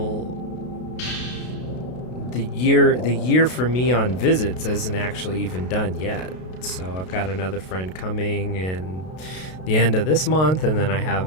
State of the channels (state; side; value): late; right; 32 ms